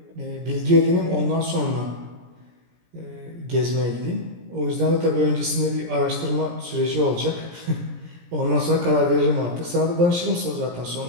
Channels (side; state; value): left; late; 17 ms